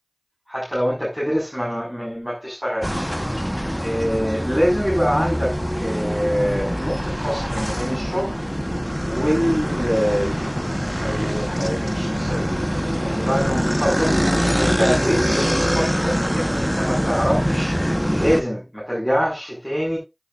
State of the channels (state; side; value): identical; both; correlation 1.00